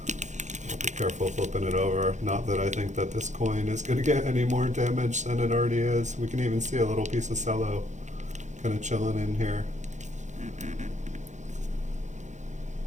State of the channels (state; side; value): late; left; 0.35 ms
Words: I'll be careful flipping it over. Not that I think that this coin is going to get any more damage than it already is. We can even see a little piece of cello kind of chilling in here.